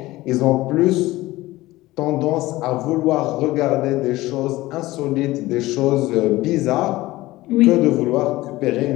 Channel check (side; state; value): right; quieter; 18.2 dB